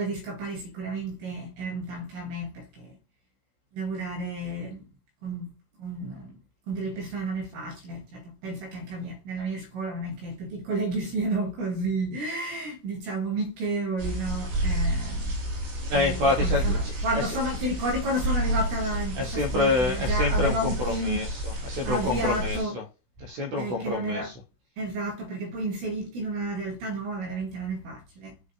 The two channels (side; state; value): left; late; 16 ms